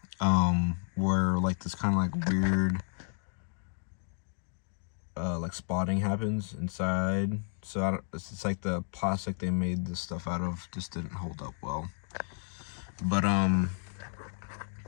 where like this kind of like weird like spotting happens inside. So it's like the plastic they made this stuff out of just didn't hold up well. But I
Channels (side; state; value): right; silent; 56 dB below the other